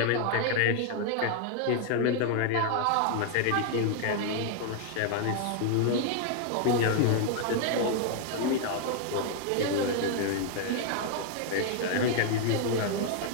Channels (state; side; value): different; both; correlation 0.00